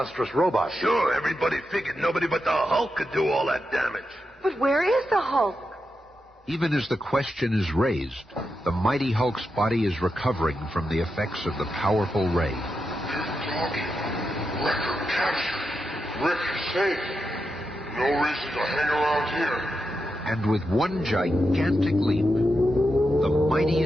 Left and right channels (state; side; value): normal; both; correlation 0.87